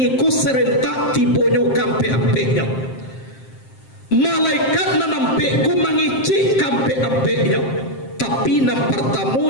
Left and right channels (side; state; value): right; late; 7.6 ms